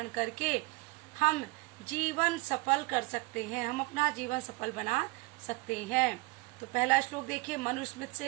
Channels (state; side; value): quieter; left; 25.4 dB